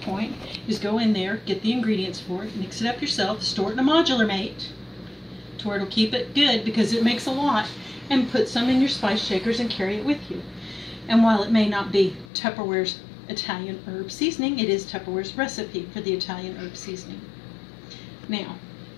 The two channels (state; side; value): drops out; right; at 12.3 s